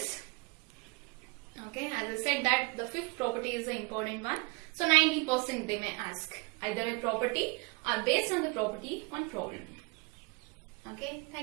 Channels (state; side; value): quieter; left; 29.1 dB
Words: Okay, as I said that the 5th property is the important one. So 90% they may ask either a property or based on the property one problem. Okay,